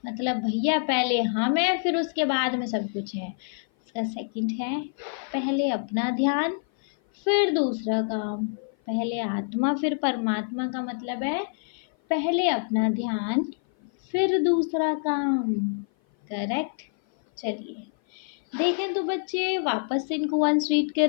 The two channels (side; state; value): right; silent; 56 dB below the other